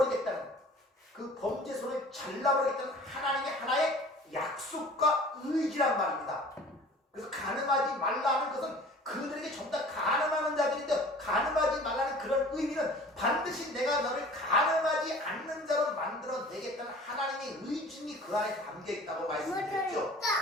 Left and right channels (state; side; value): normal; both; correlation 0.46